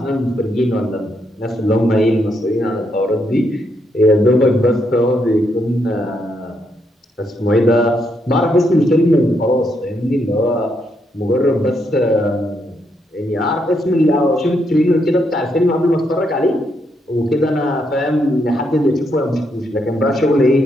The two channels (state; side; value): normal; both; correlation 0.78